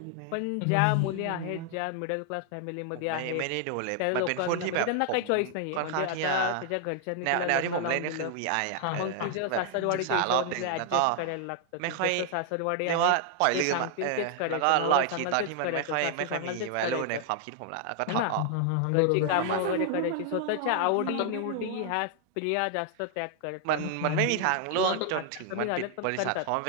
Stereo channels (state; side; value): different; both; correlation 0.00